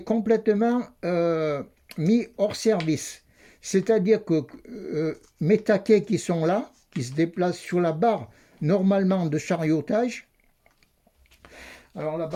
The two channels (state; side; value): identical; both; correlation 1.00